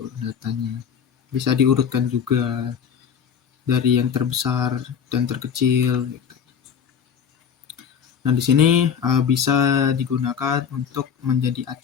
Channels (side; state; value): right; quieter; 7.5 dB